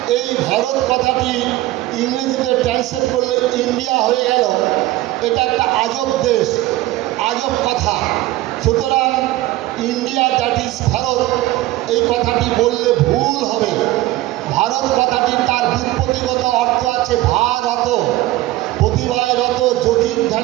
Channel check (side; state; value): left; quieter; 16.9 dB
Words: এই ভারত কথাটি ইংরেজিতে ট্রান্সলেট করলে ইন্ডিয়া হয়ে গেল। এটা একটা আজব দেশ, আজব কথা। সুতরাং ইন্ডিয়া দ্যাট ইজ ভারত এই কথাটি বললে ভুল হবে। ভারত কথাটি তার ব্যুৎপত্তিগত অর্থ আছে ভারত, প্রতিভায় রত,